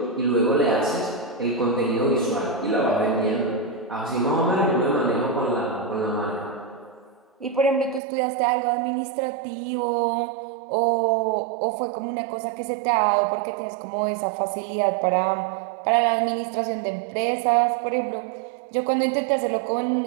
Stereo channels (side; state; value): left; drops out; at 8.0 s